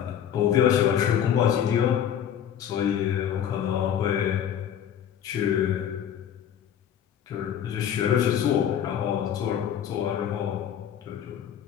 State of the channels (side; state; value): right; quieter; 9.4 dB